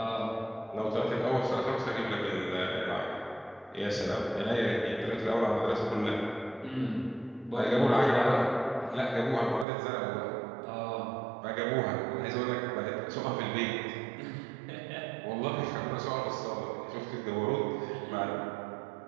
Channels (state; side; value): drops out; left; at 9.7 s